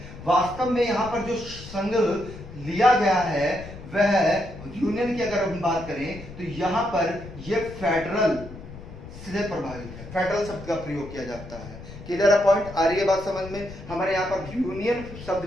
वास्तव में यहां पर जो संघ लिया गया है वह यूनियन की अगर हम बात करें तो यहां पर यह फेडरल से प्रभावित है, फेडरल शब्द का प्रयोग किया जाता है। क्लियर है पॉइंट, आ रही है बात समझ में? हमारे यहाँ पर यूनियन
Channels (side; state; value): left; noise; rumble, 14 dB below the sound